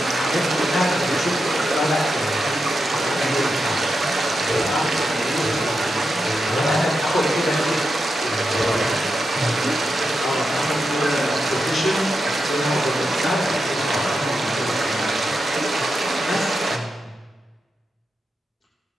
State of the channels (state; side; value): normal; both; correlation 0.87